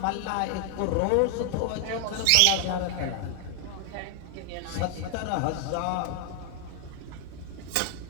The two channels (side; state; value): both; different; correlation 0.00